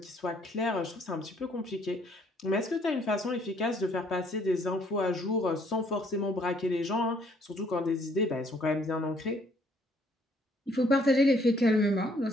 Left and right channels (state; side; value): normal; both; correlation 0.64